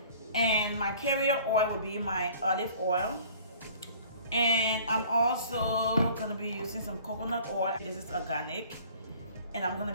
and my carrier oil will be my olive oil, and I'm also gonna be using some coconut oil. This is organic, and I'm gonna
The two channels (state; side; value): inverted; both; correlation -0.50